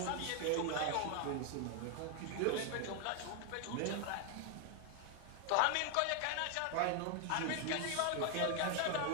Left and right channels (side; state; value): both; different; correlation 0.01